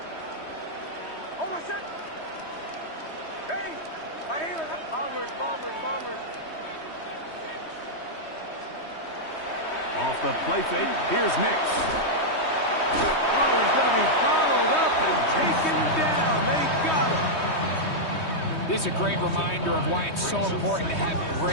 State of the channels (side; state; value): right; late; 3.2 ms